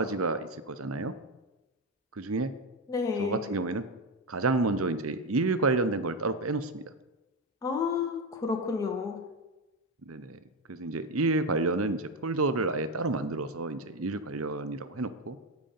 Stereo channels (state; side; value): normal; both; correlation 0.12